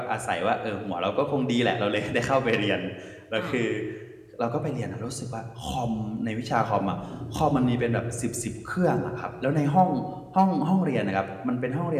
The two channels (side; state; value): both; identical; correlation 1.00